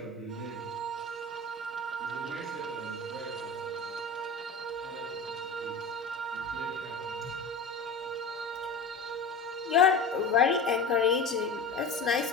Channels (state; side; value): quieter; right; 3.7 dB